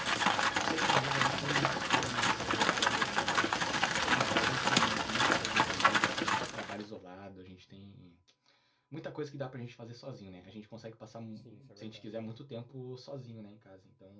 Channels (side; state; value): both; identical; correlation 1.00